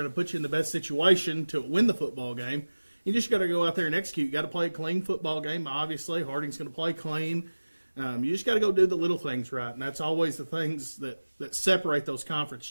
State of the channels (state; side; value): inverted; both; correlation -1.00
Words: to put you in the best situation to win the football game. You just got to go out there and execute. You got to play a clean football game. Obviously, Harding's going to play clean. You just got to go do the little things right, and that's always the things that separate those conference